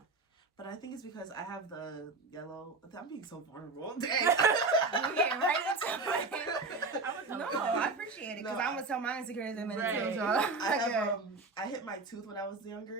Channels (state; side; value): quieter; left; 3.6 dB